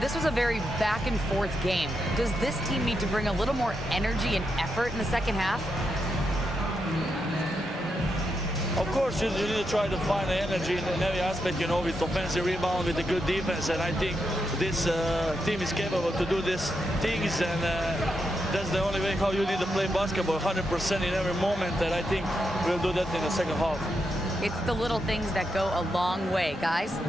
was a very back-and-forth game. Does this team need to bring a little more energy and effort in the second half? Of course, you need to try to find the energy in every aspect, with offensive rebound, with a good defense. And I think this team is capable to do these things. And that's the only way how you need to play basketball, 100% in every moment. And I think we'll do that in the second half. It's the little things that go a long way, guys.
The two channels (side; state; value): both; normal; correlation 0.84